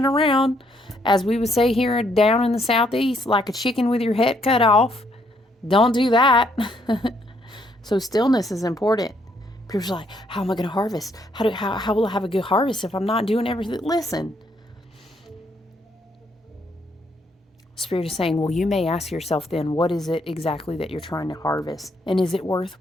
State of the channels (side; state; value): both; normal; correlation 0.71